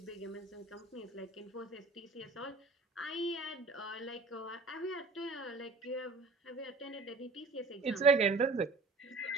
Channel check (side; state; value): left; quieter; 3.7 dB